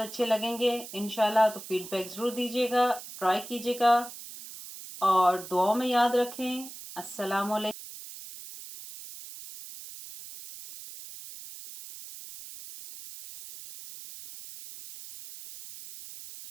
लगेंगे इंशाल्लाह। तो फीडबैक ज़रूर दीजिएगा, ट्राई कीजिएगा और दुआओं में याद रखें। अस्सलाम वालेकुम।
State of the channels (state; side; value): noise; right; hiss, 13 dB below the sound